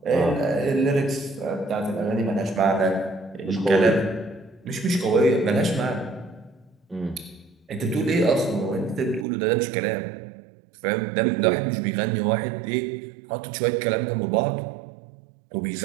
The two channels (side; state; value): left; drops out; at 9.2 s